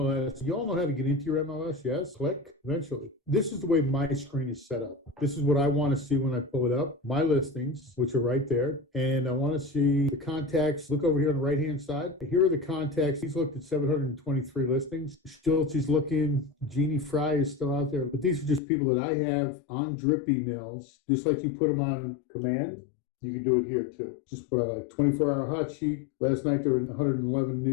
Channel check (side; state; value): right; drops out; at 18.6 s